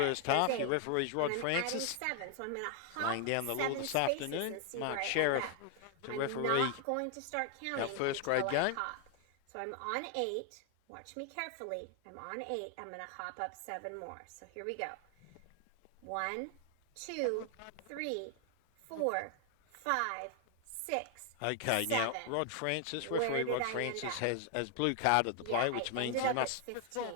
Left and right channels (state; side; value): different; both; correlation 0.00